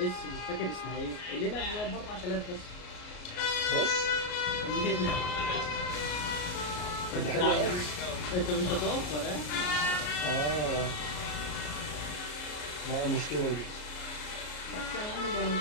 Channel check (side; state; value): right; late; 33 ms